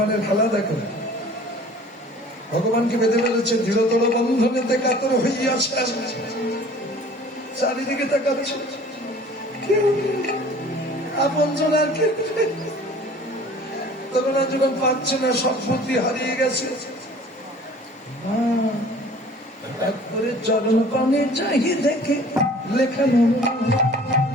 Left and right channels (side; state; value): both; normal; correlation 0.48